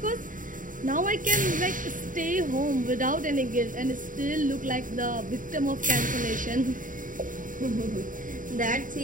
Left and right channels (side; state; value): left; late; 0.39 ms